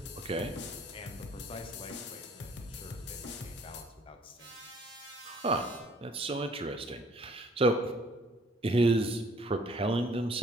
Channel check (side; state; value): both; normal; correlation 0.58